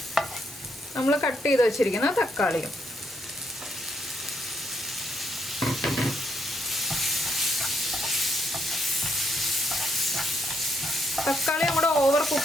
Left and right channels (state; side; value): normal; both; correlation 0.75